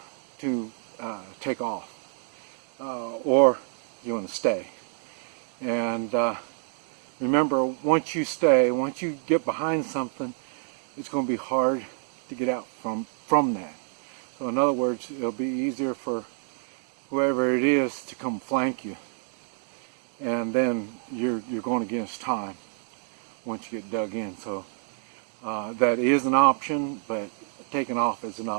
to take off, or you want to stay. And remember, once you get behind something, it's going to be hard to get out from that. So in other words, it'll be easier for whoever it is to come flank you, and then you're going against time once you get dug in. So that is an option, but taking off is an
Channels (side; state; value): left; silent; digital silence